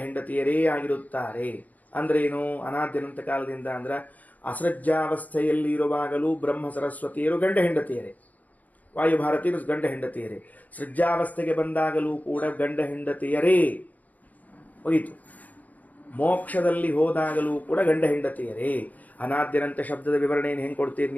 ಹೆಂಡತಿಯರೇ ಆಗಿರುತ್ತಾರೆ ಅಂದ್ರೇನು? ಅನಾದ್ಯನಂತ ಕಾಲದಿಂದ ಅಂದ್ರೆ ಅಸೃಜ್ಜಾವಸ್ಥೆಯಲ್ಲಿ ಇರುವಾಗಲೂ ಬ್ರಹ್ಮ ಸರಸ್ವತಿಯರು ಗಂಡ ಹೆಂಡತಿಯರೇ, ವಾಯುಭಾರತೀಯರು ಗಂಡ ಹೆಂಡತಿಯರೇ. ಸೃಜ್ಜಾವಸ್ಥೆಗೆ ಬಂದಾಗಲೂ ಕೂಡ ಗಂಡ ಹೆಂಡತಿಯರೇ ಹೋಯಿತು. ಮೋಕ್ಷದಲ್ಲಿ ಹೋದಾಗಲೂ ಕೂಡ ಗಂಡ ಹೆಂಡತಿಯರೇ. ಅನಾದ್ಯನಂತ ಶಬ್ದದ ವಿವರಣೆಯನ್ನು ಹೆಂಗೆ ಕೊಡ್ತೀರಿ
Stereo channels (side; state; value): right; late; 0.078 ms